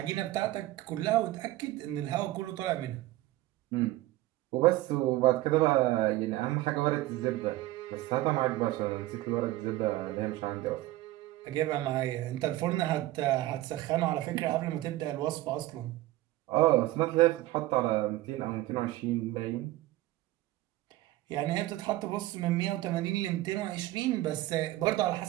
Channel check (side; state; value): left; quieter; 16.8 dB